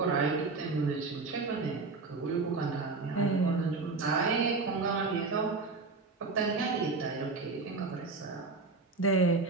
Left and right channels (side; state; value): left; quieter; 4.0 dB